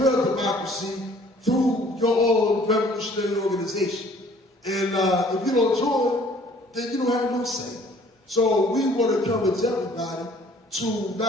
democracy through your own revolutionary organization. And if you don't join, then you don't have no say. So we want to encourage everybody to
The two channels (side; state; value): both; normal; correlation 0.56